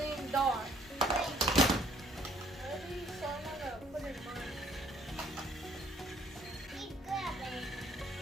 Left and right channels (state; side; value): normal; both; correlation 0.62